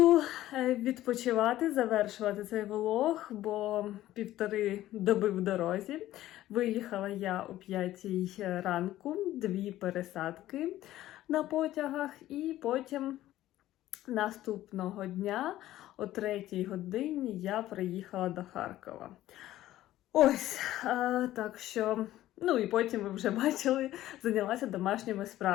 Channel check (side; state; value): right; quieter; 14.4 dB